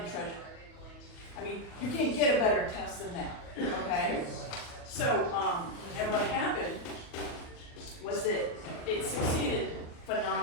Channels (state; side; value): late; right; 40 ms